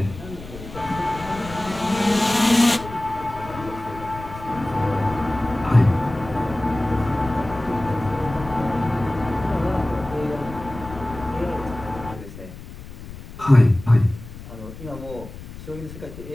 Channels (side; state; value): left; noise; rumble, 14 dB below the sound